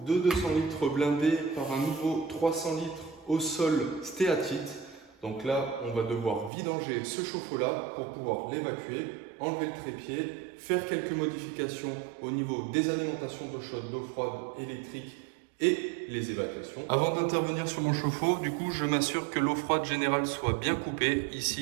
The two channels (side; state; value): left; drops out; at 6.5 s